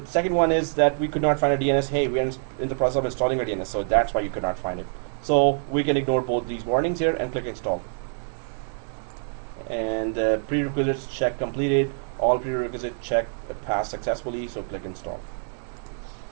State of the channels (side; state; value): left; silent; 61 dB below the other